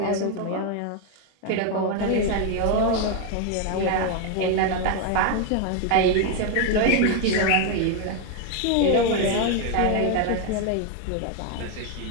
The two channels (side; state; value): both; different; correlation 0.01